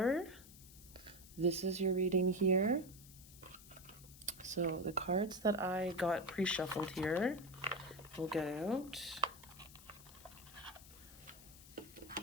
this is your reading here. So the cards that I got pre-shuffled here, we'll get out.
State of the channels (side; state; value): left; noise; hiss, 19 dB below the sound